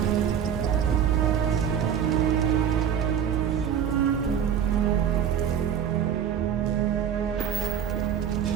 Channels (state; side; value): quieter; left; 8.5 dB